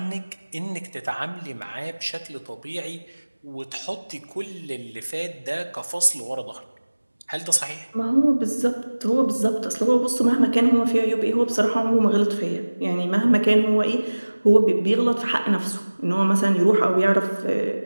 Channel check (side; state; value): both; inverted; correlation -1.00